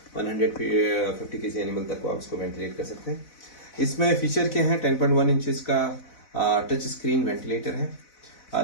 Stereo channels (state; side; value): late; right; 4.0 ms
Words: 150 kg animal तक को आप इसको वेंटिलेट कर सकते हैं। इसमें फीचर क्या है? 10.1 इंचेस का टच स्क्रीन वेंटिलेटर है।